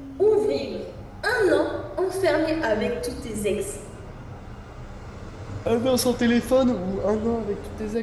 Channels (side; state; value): both; identical; correlation 1.00